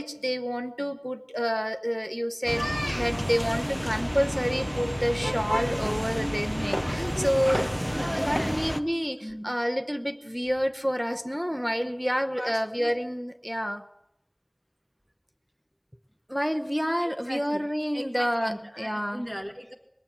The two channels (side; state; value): both; identical; correlation 1.00